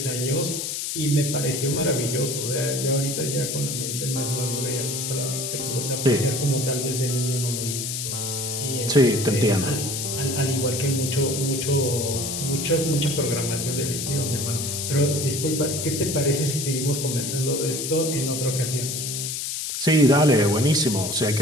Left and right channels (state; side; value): noise; left; hiss, 3 dB below the sound